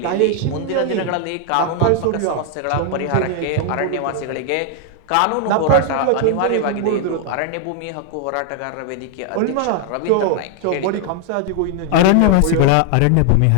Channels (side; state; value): both; different; correlation 0.00